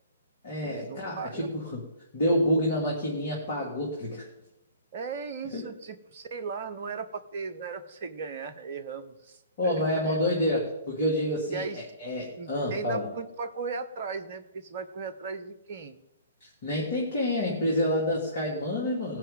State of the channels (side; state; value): both; inverted; correlation -0.44